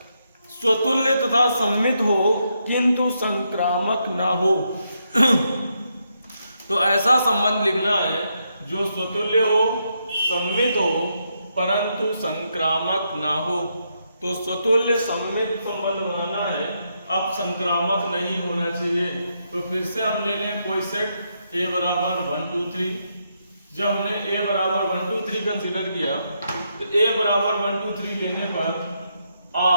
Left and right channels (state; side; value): inverted; both; correlation -0.80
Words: स्वतुल्य तथा सममित हो किंतु संक्रामक ना हो। तो ऐसा संबंध लिखना है जो स्वतुल्य हो, सममित हो परंतु संक्रामक ना हो। तो स्वतुल्य सममित संबंध बनाना है, अब संक्रामक नहीं होना चाहिए। तो फिर से हम ले लें कोई सेट A बराबर 1 2 3, जब हमने a बराबर 1 2 3 कंसीडर किया तो a बराबर 1 2 3 लेने पर